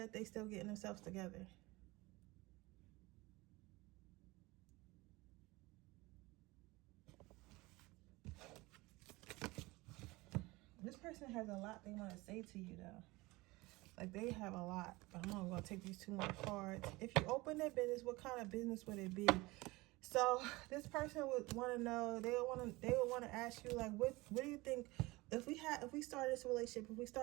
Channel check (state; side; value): quieter; left; 22.0 dB